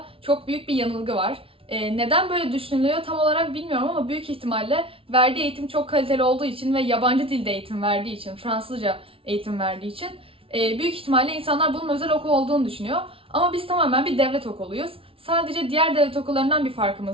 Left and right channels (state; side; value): late; left; 0.26 ms